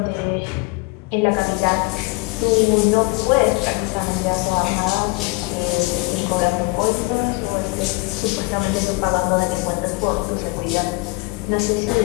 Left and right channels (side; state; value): right; quieter; 26.0 dB